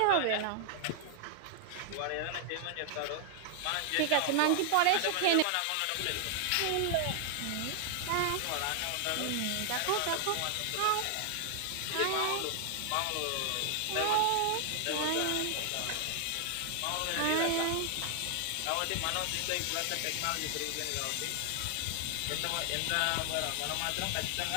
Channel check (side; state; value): both; different; correlation 0.00